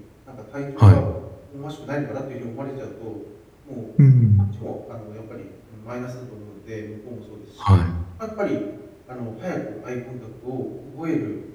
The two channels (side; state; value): both; identical; correlation 1.00